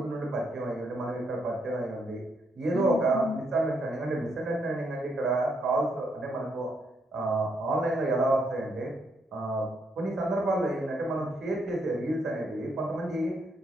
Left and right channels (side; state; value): both; normal; correlation 0.76